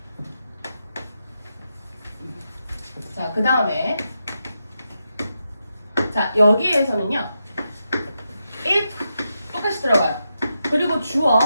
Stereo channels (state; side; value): inverted; both; correlation -0.86